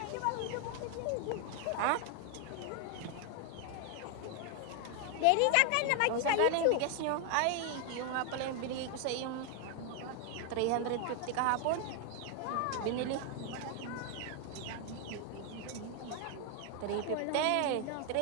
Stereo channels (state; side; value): different; both; correlation 0.01